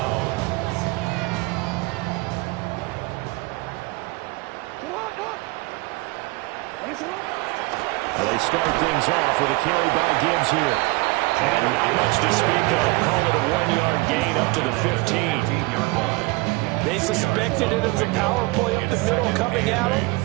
They start things off with a carry by Gibbs here. And not much to speak of. Call it a 1-yard gain up to the 15-yard line. They suspected it as a power play up the middle coming at them,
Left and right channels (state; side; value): quieter; left; 23.9 dB